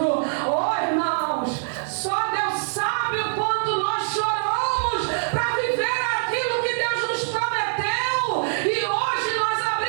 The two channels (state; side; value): silent; left; digital silence